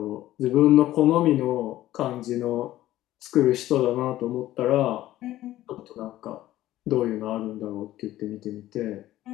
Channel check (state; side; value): quieter; right; 14.6 dB